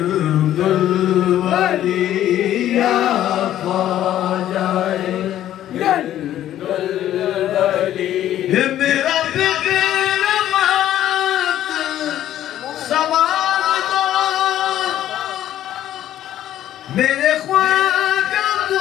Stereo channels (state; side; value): quieter; right; 12.2 dB